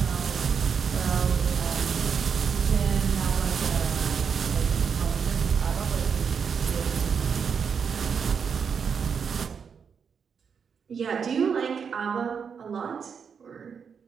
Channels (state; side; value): quieter; left; 6.5 dB